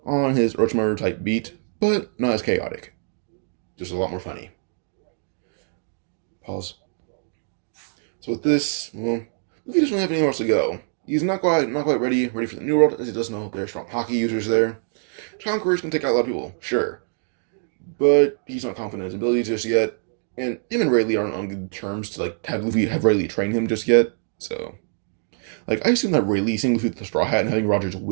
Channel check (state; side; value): silent; left; digital silence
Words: On his Orochimaru type beat, but not as chaotic. Just a lot more funny. Pause. So with this, well, Luffy doesn't really have anywhere else to go. He's not quite ready for the New World, as he does know there are strong hockey users there. Conquerors can take out a lot of people, sure. But he's not confident in his abilities just yet, and him and Rayleigh aren't on good terms to like have Rayleigh train him just yet. So, like, I assume that Rayleigh seeing Luffy with the straw hat and having Roger's